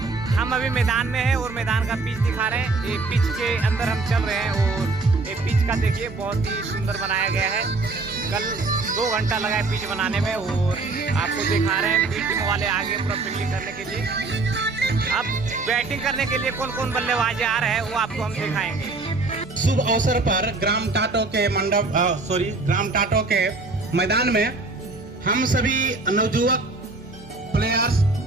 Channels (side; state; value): left; quieter; 3.6 dB